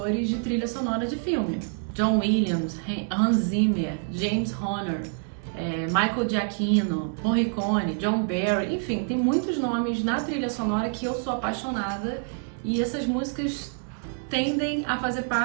de trilha sonora de filme. John Williams, Hans Zimmer, James Horner, Michael Giacchino, Morricone, John Barry, enfim, tem muitos nomes na trilha sonora que eu sou apaixonada e essas músicas tendem a fazer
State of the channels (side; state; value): left; silent; 60 dB below the other